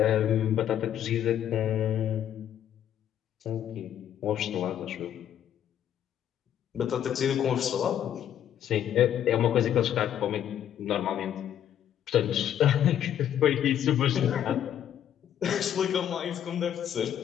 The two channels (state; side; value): quieter; right; 10.3 dB